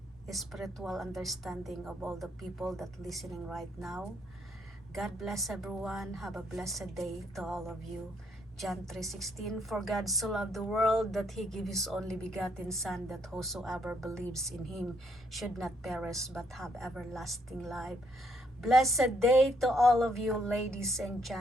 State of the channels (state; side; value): noise; left; rumble, 27 dB below the sound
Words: spiritual understanding of all the people that listening right now. God bless everyone. Have a blessed day to all of you. John 3:16, for God so loved the world that he gave his only begotten Son, that whosoever believes in him should not perish but have everlasting life. Blessed day to all of you, ladies and